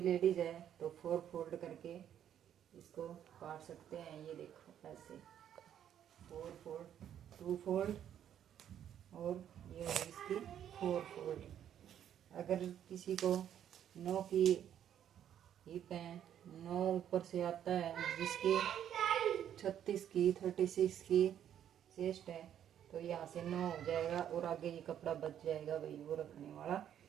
है तो 4 फोल्ड करके इसको काट सकते हैं। ये देखो, ऐसे 4 फोल्ड, 2 फोल्ड और ये है इसकी 4 फोल्ड। अगर किसी को 9 की हिप है, 9 ऊपर से आता है, जिसकी 36 की 36 की चेस्ट है, तो यहाँ से 9 हो जाएगा और आगे ये कपड़ा बच जाएगा भाई वो रखने वाला,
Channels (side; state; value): left; quieter; 10.0 dB